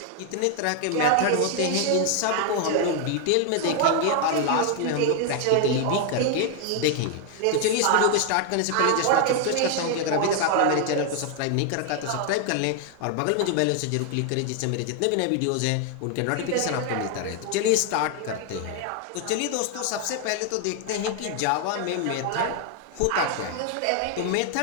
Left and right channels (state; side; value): different; both; correlation 0.00